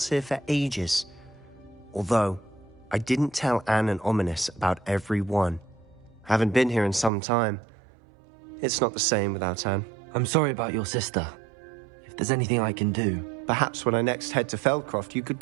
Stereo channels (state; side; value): drops out; left; at 7.1 s